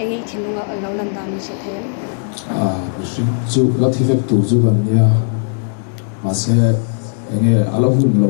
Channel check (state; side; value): silent; right; 64 dB below the other